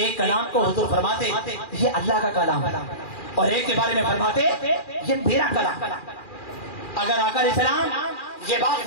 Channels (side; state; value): right; late; 2.4 ms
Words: کلام کو حضور فرماتے یہ اللہ کا کلام ہے اور ایک کے بارے میں فرماتے یہ میرا کلام. اگر آقا علیہ السلام یہ بات